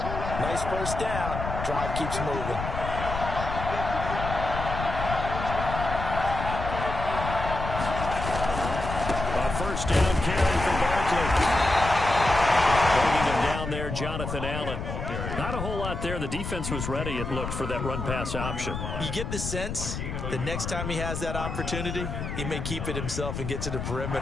nice first down. Drive keeps moving. First down carry for Barkley. Bringing him down there, Jonathan Allen. Not a whole lot there. The defense was ready, it looked, for that run-pass option. You get the sense that next time he has that opportunity, he may keep it himself and get to the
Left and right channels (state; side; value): noise; left; rumble, 5 dB below the sound